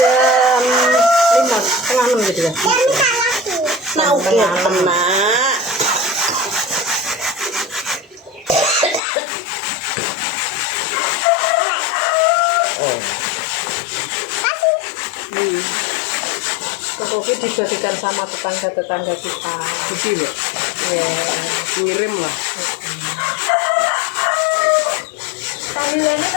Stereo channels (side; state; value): right; drops out; at 9.0 s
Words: 5, setengah 6 gitu ya. Nah, oke, tenang. Kopi dibagikan sama tetangga-tetangga kita. isi mbak. Ya. Ngirim lah. Panggilannya